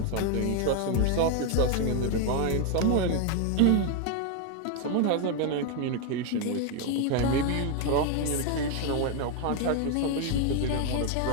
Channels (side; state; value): both; different; correlation 0.01